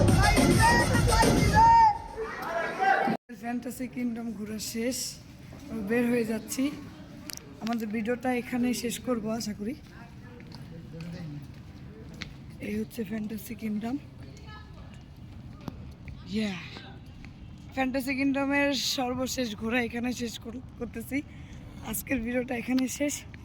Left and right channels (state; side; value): identical; both; correlation 1.00